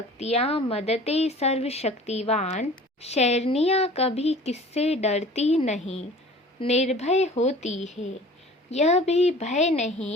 मदते सर्वशक्तिवान। शेरनियाँ कभी किससे डरती नहीं, निर्भय होती है। यह भी भय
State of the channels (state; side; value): normal; both; correlation 0.44